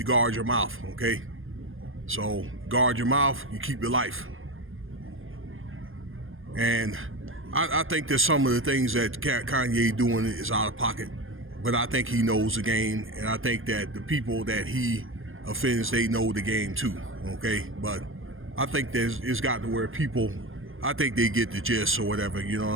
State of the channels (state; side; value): late; left; 0.59 ms